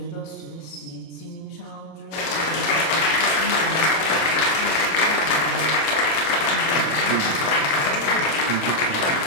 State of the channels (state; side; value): late; right; 26 ms